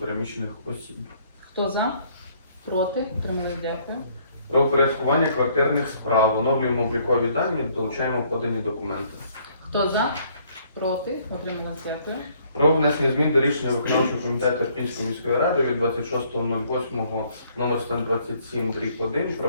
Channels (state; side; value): inverted; both; correlation -0.64